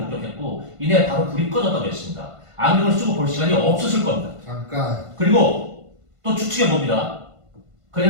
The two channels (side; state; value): left; late; 1.5 ms